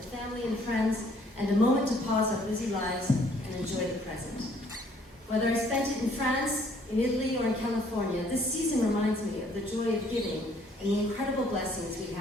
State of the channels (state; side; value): normal; both; correlation 0.62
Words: family and friends, and a moment to pause our busy lives and enjoy the present. Whether I spent it in France, in Italy, or in California, this season reminds me of the joy of giving and the incredible blessings we